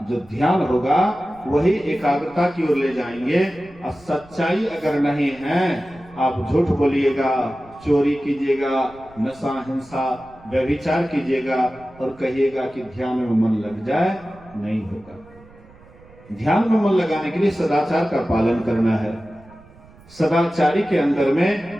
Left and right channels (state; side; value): noise; right; rumble, 24 dB below the sound